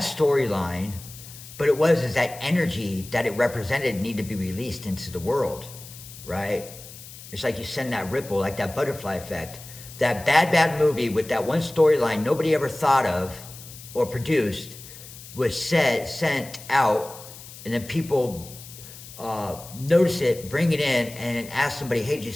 storyline, but is that energy that it represented needed to be released into the world, right? It's like you send that ripple, like that butterfly effect. That bad movie with that one storyline nobody ever thought of or produced was sent out, and then people notice it, bring it in, and then ask somebody, hey, did you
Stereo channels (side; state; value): left; noise; hiss, 16 dB below the sound